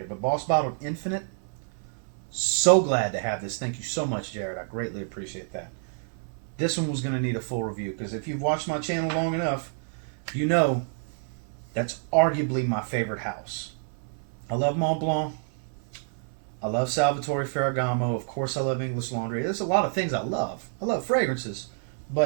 But Boss Bottled Infinite, so glad to have this. Thank you so much, Jared. I greatly appreciate that. This one was going to need a full review because if you've watched my channel long enough, you know that's arguably my favorite house. I love Mont Blanc. I love Salvatore Ferragamo. Of course, I love English Laundry. There's a lot of things I love. I love fragrances.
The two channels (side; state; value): left; silent; 59 dB below the other